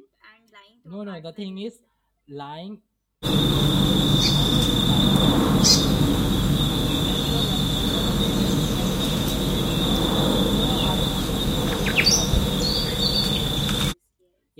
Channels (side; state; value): both; identical; correlation 1.00